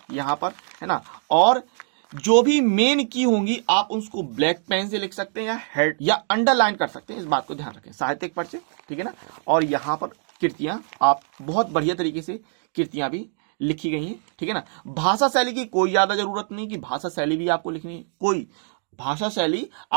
यहाँ पर, है ना। और जो भी मेन की होंगी आप उसको ब्लैक पेन से लिख सकते हैं या हेड या अंडरलाइन कर सकते हैं, इस बात को ध्यान रखें। साहित्यिक परिचय, ठीक है ना। और यहाँ पर कृतियां आप बहुत बढ़िया तरीके से कृतियां भी लिखी गई हैं, ठीक है ना। भाषा शैली की कोई ज्यादा जरूरत नहीं कि भाषा शैली भी आपको लिखनी है, कोई भाषा शैली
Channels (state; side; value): silent; left; digital silence